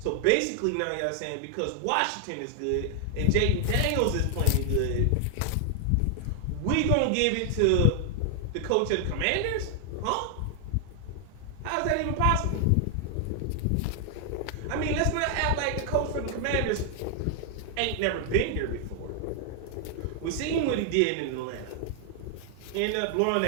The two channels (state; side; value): different; both; correlation 0.00